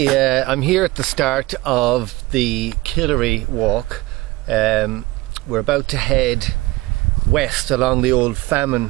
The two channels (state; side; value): quieter; left; 20.3 dB